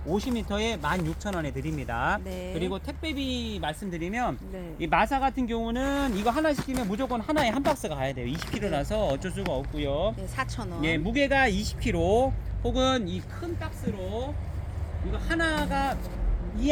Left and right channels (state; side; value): identical; both; correlation 1.00